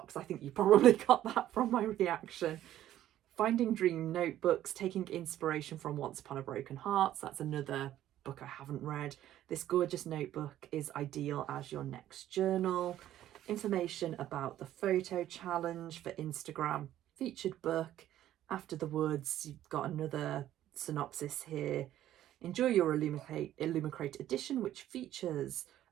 I think you probably got that from my reaction. Finding Dream notebooks, taking inspiration from Once Upon a Broken Hearts. That's another book I haven't read. This gorgeous notebook is ideal as your next journal. Information about the photo challenge for Instagram. Featured book, After the Woods. You've got another synopsis here. Enjoy your Illumicrate edition, which features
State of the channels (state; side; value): quieter; left; 12.7 dB